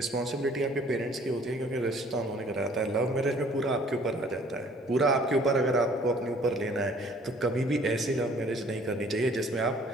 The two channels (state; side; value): normal; both; correlation 0.56